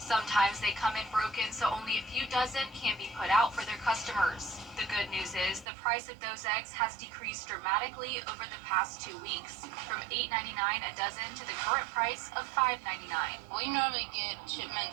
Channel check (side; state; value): left; drops out; at 5.7 s